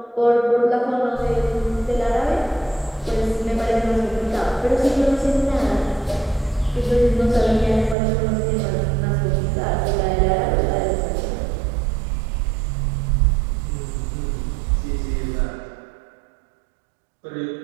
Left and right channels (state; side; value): drops out; left; at 8.0 s